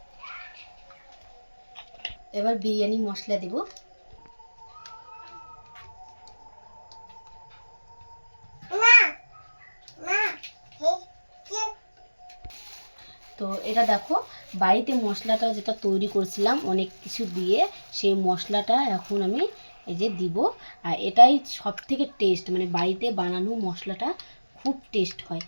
এবার বিরিয়ানি মশলা দিব। তো এটা দেখো বাড়িতে মশলাটা যেটা তৈরি করছিলাম অনেক কিছু দিয়ে, সেই মশলাটা এখন আমি এই যে দিব। আর এটাই সব থেকে টেস্ট, মানে বাড়িতে বানানো মশলাটা খুব টেস্ট হয়,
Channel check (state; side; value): inverted; both; correlation -1.00